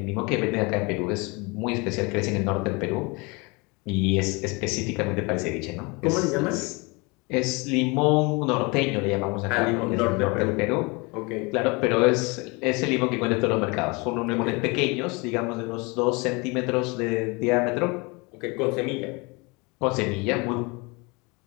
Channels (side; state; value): right; quieter; 27.7 dB